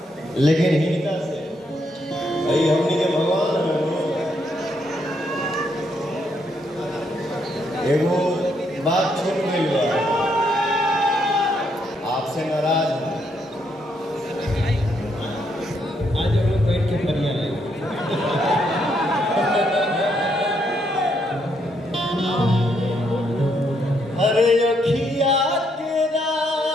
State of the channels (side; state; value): both; normal; correlation 0.75